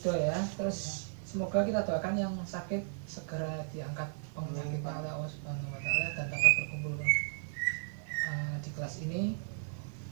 ya. Terus semoga kita doakan yang sakit segera diangkat penyakitnya oleh Allah Subhanahu wa taala dan dapat berkumpul di kelas ini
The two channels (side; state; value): left; silent; 55 dB below the other